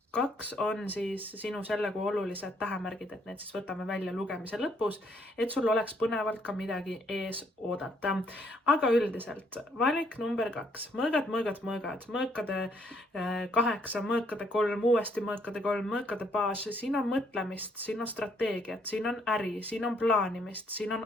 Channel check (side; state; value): both; normal; correlation 0.69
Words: 2 on siis sinu selle kuu olulised tähemärgid, et need siis võtame välja lugemise lõpus, et sul oleks põnevalt ka midagi ees oodata. Aga üldiselt valik number 2, mõõgad, mõõkade 8, mõõkade 3, uuesti mõõkade 3, mõõkade baas, siin on mõtlemist, siin on strateegiat, siin on äri, siin on plaanimist, siin on